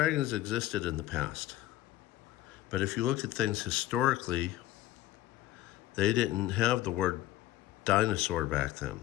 existed in the past. But if you look at things historically, they didn't have the word dinosaur back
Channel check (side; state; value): right; quieter; 15.0 dB